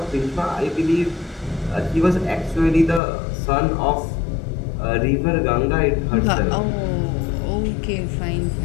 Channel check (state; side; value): drops out; right; at 3.0 s